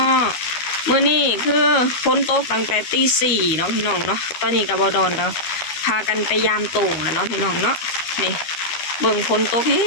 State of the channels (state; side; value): late; right; 12 ms